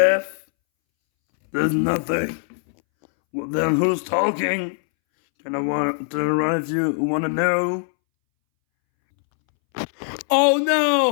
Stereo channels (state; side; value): silent; right; 64 dB below the other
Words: There's nothing. Well, then who's talking? Can I want to turn around if you want to know? Oh